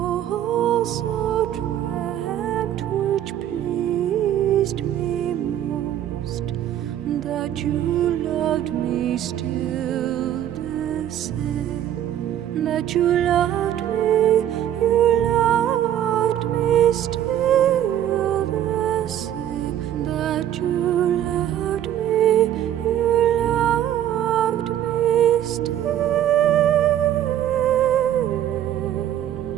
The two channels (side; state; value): left; quieter; 11.2 dB